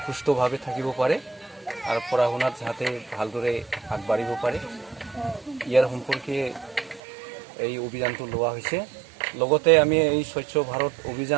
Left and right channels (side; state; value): left; drops out; at 7.0 s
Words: সুস্থভাৱে থাকিব পাৰে আৰু পঢ়া শুনাত যাতে ভালদৰে আগবাঢ়িব পাৰে, ইয়াৰ সম্পৰ্কে এই অভিযানটো লোৱা হৈছে। লগতে আমি এই স্বচ্ছ ভাৰত